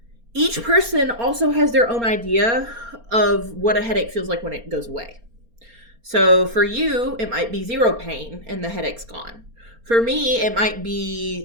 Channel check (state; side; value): late; left; 4.3 ms